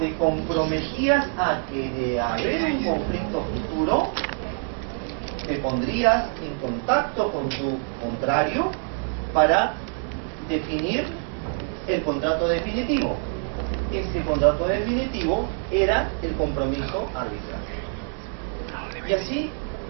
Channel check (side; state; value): left; quieter; 39.9 dB